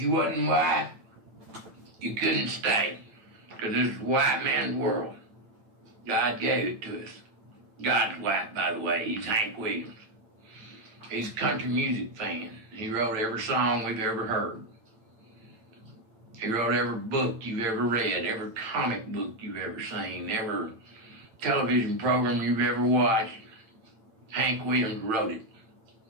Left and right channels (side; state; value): left; late; 9.0 ms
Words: wasn't white, you couldn't stay, because this is a white man's world. God gave it to us. God's white, by the way. He's Hank Williams. He's a country music fan. He wrote every song we've ever heard. He wrote every book you've ever read, every comic book you've ever seen, every television program you've ever watched. Hank Williams wrote it.